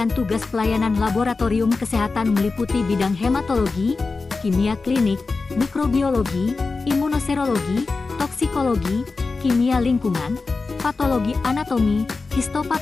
tugas pelayanan laboratorium kesehatan meliputi bidang hematologi, kimia klinik, mikrobiologi, imunoserologi, toksikologi, kimia lingkungan, patologi anatomi,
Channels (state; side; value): quieter; right; 4.0 dB